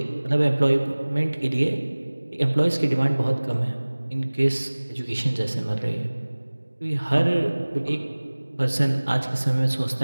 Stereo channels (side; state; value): both; inverted; correlation -1.00